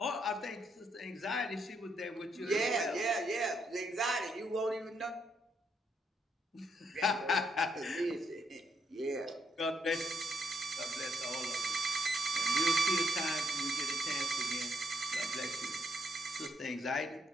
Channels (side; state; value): both; normal; correlation 0.76